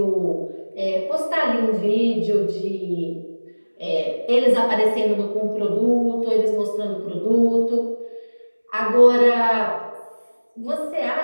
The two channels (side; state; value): both; inverted; correlation -1.00